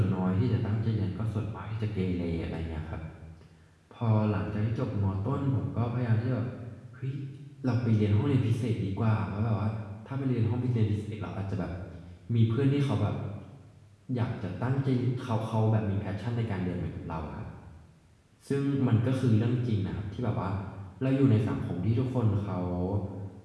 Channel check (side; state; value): both; identical; correlation 1.00